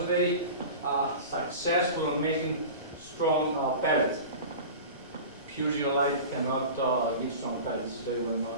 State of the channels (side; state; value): both; inverted; correlation -0.34